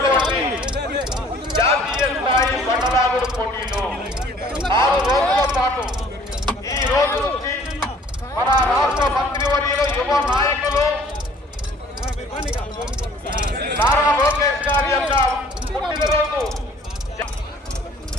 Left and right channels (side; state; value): both; normal; correlation 0.55